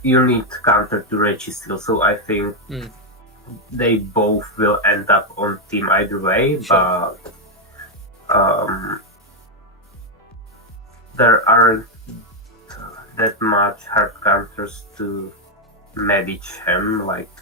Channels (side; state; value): both; normal; correlation 0.02